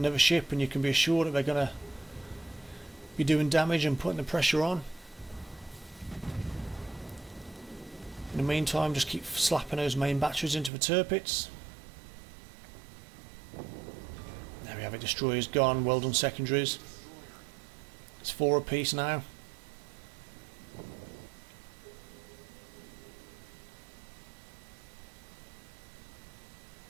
ship, and you can be assured that they're going to be doing damage and putting the pressure on. In the meantime, just keep slapping those main batteries into the Tirpitz. There we have it, destroyers gone, well done secondaries. It's 4 apiece now.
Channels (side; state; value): left; drops out; at 10.7 s